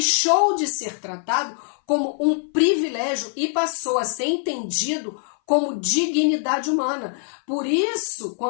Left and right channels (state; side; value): silent; right; 60 dB below the other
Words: de ser tratado como um privilégio e passou a ser entendido como dignidade humana. Por isso,